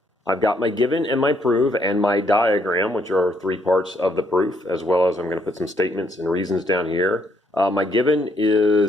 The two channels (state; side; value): normal; both; correlation 0.71